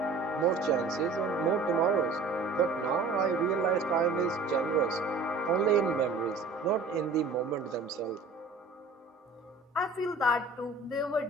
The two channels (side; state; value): left; quieter; 3.9 dB